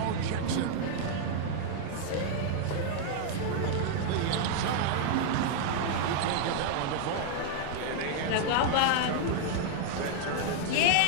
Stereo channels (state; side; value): different; both; correlation 0.00